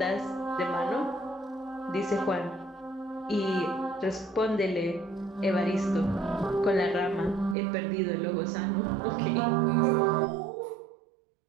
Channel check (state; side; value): drops out; left; at 7.6 s